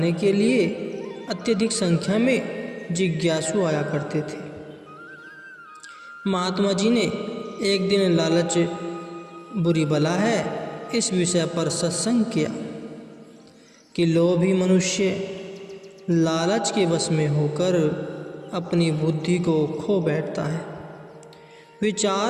के लिए अत्यधिक संख्या में जिज्ञासु आया करते थे। महात्मा जी ने एक दिन लालच बुरी बला है इस विषय पर सत्संग किया कि लोभी मनुष्य लालच के वश में होकर अपनी बुद्धि को खो बैठता है।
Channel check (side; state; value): both; identical; correlation 1.00